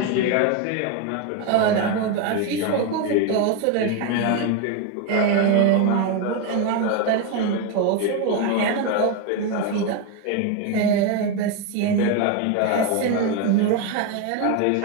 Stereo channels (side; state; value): both; different; correlation 0.02